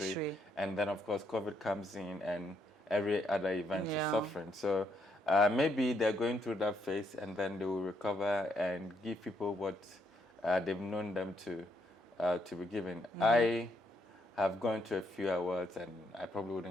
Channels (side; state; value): both; normal; correlation 0.74